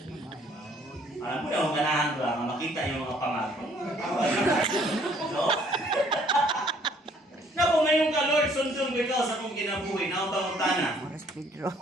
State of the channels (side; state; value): both; normal; correlation 0.61